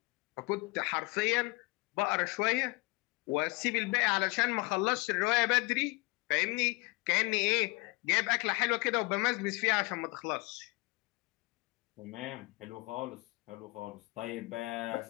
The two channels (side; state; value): right; quieter; 25.3 dB